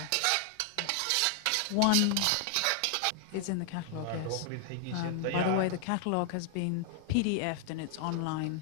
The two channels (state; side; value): different; both; correlation 0.00